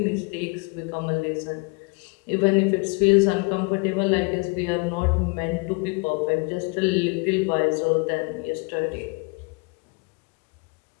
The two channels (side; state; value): right; quieter; 30.6 dB